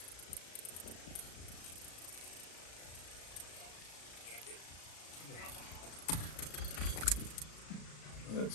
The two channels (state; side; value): late; right; 36 ms